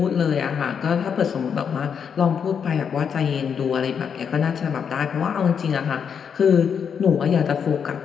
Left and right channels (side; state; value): right; quieter; 7.1 dB